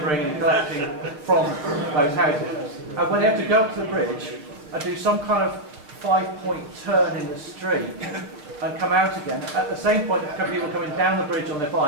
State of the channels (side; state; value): left; late; 6.7 ms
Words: and collecting from those houses. And when they have to go up to the bridge and do some kind of 5-point turn in the street and come out again, at the same point, there are people coming down the bridge on their